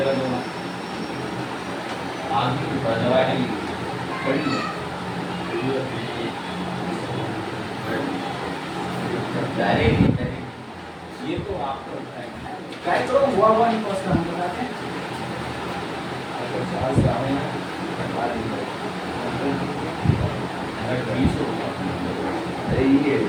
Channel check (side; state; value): both; identical; correlation 1.00